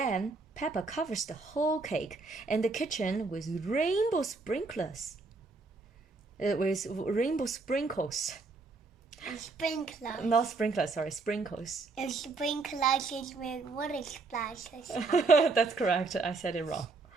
Peppa covers the whole cake and the kitchen with rainbow sprinklers. With rainbow sprinkles. Sprinklers. Not sprinklers, sorry, sprinkles. And sprinklers is with water splashes. That's correct. I said it wrong.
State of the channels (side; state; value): left; quieter; 3.9 dB